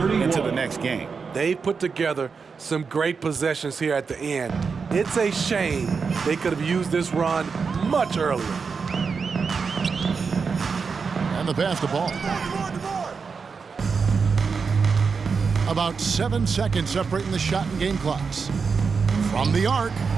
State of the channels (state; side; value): quieter; left; 5.3 dB